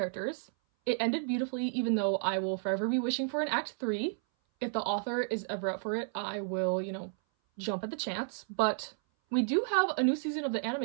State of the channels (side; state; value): left; silent; 56 dB below the other